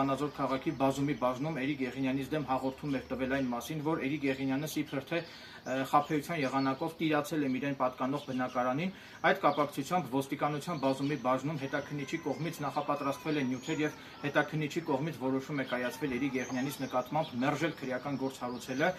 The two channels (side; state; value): both; identical; correlation 1.00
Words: քաղաքի բազումի բաժնում Էրիկ Եղինյանից դեմ հաղորդում էր տվել այն մասին, որ Էրիկ Եղինյանը իբր թե խաբեության եղանակով տիրացել է իրեն պատկանող բնակարանին։ Այդ կապակցությամբ ոստիկանության բազումի բաժնում հետաքննիչի կողմից նախապատրաստվել են նյութեր եւ հետաքննիչի կողմից որոշում է կայացվել Էրիկ Եղինյանից նկատմամբ մերժել քրեական գործ հարուցելը